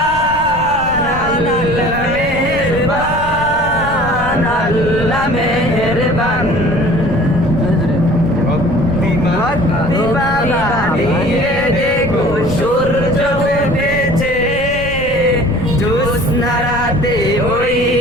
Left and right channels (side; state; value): left; noise; rumble, 13 dB below the sound